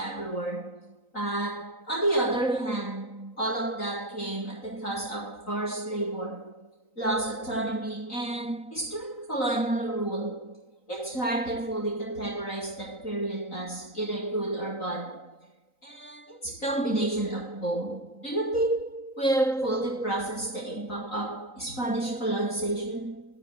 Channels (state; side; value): late; right; 3.9 ms